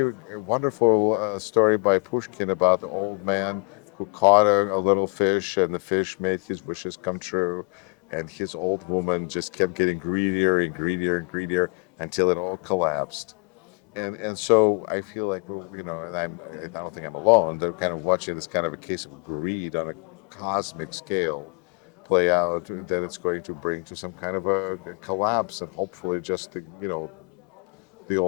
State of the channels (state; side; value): quieter; right; 34.6 dB